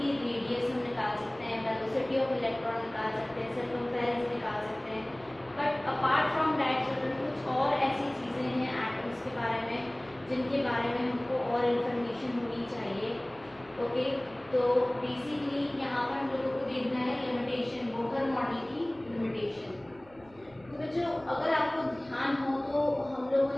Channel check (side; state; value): right; noise; hum, 27 dB below the sound